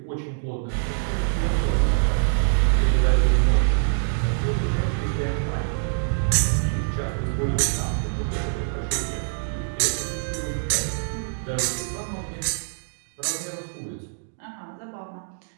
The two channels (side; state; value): left; silent; digital silence